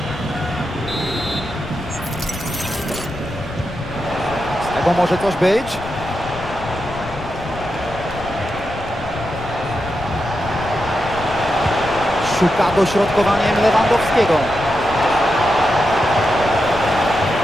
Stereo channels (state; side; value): noise; left; rumble, 13 dB below the sound